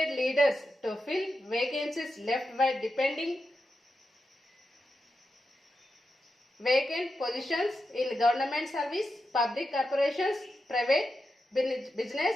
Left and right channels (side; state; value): both; normal; correlation 0.88